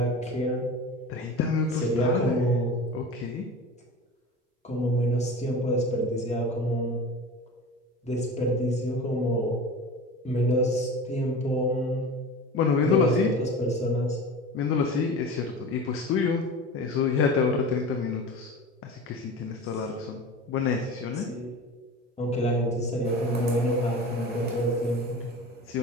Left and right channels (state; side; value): normal; both; correlation 0.34